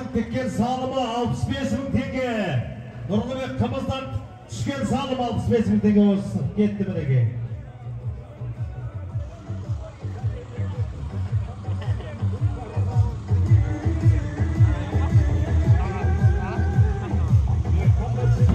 тіккен салымы 65 мың теңге. Нұрлыбек қымыздан түскен салым 65 мың теңге осы кетті мінеке.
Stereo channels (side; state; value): both; identical; correlation 1.00